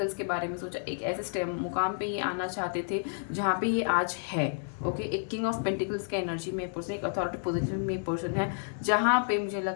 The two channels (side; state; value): right; silent; 56 dB below the other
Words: के बारे में सोचा। एक ऐसे मुकाम पर ये आना चाहते थे जहाँ पर ये आज है, ओके। एक किंग ऑफ पेंटिकल्स के एनर्जी में पर्सन, एक अथॉरिटी पोजीशन में पर्सन है, जहाँ पे मुझे